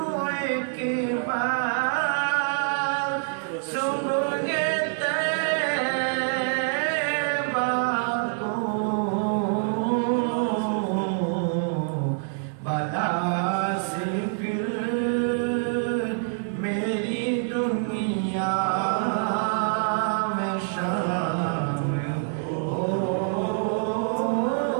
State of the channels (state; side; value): silent; left; digital silence